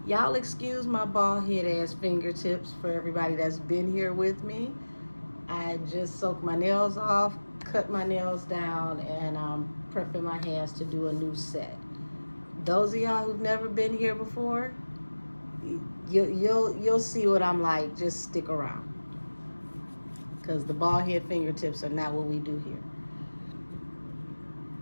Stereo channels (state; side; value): inverted; both; correlation -1.00